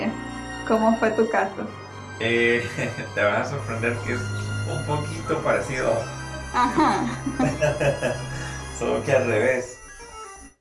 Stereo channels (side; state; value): both; identical; correlation 1.00